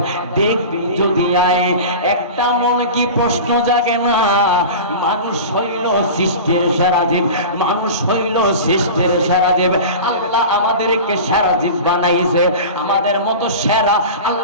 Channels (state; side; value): inverted; both; correlation -0.32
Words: দেখবি যদি আয়। একটা মনে কি প্রশ্ন জাগে না, মানুষ হইল সৃষ্টির সেরা জীব, মানুষ হইল সৃষ্টির সেরা জীব। আল্লাহ আমাদেরকে সেরা জীব বানাইছে, আমাদের মতো সেরা